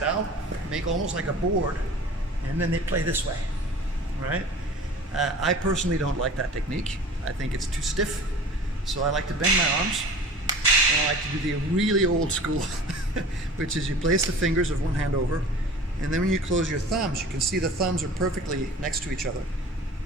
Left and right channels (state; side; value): normal; both; correlation 0.41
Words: out, make almost like a board, and then they play this way, right? I personally don't like that technique. I think it's too stiff. So I like to bend my arms, and I like to do the really old school, which is you place the fingers of one hand over, and then when you close your thumbs, you can see the thumbs are perfectly next to each other.